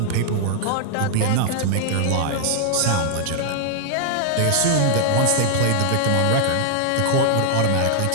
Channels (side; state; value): both; different; correlation 0.00